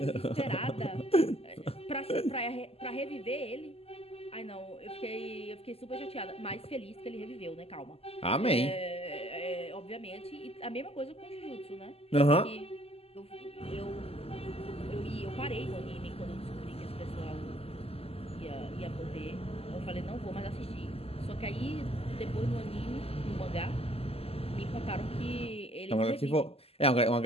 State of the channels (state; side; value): late; right; 0.29 ms